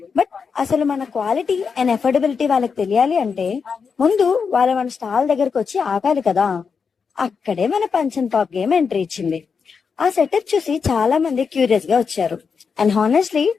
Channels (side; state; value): right; quieter; 5.7 dB